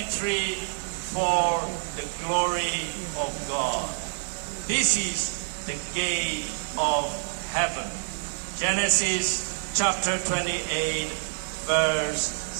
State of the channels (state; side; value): silent; left; 60 dB below the other